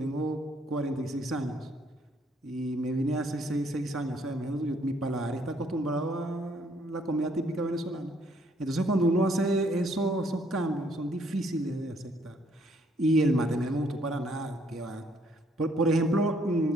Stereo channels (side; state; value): both; normal; correlation 0.67